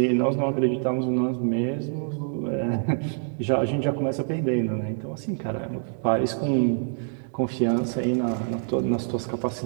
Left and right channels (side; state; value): left; silent; digital silence